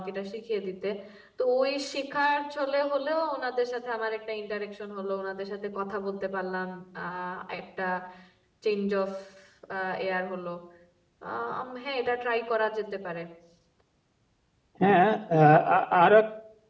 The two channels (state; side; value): identical; both; correlation 1.00